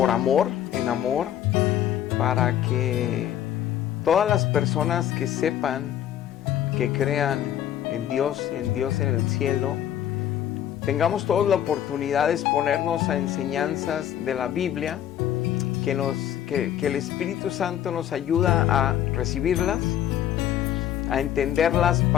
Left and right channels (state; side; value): quieter; right; 10.9 dB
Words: amor, en amor, para que todas las personas que sepan, que crean en Dios en el cielo, tengamos todos la oportunidad de exponernos a enseñanzas de la Biblia, que el Espíritu Santo nos ayuda a recibirlas, a entenderlas